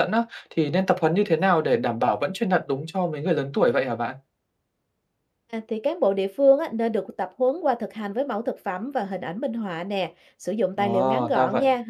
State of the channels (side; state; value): both; identical; correlation 1.00